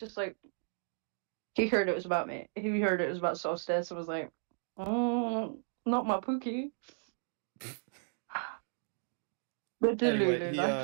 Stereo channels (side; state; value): left; silent; digital silence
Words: like, he heard it was about me. He heard it was about Solstice and was like, not my Pookie. The Anyway, Delulu life